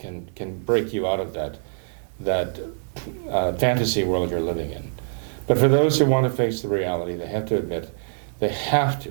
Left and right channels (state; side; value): silent; left; digital silence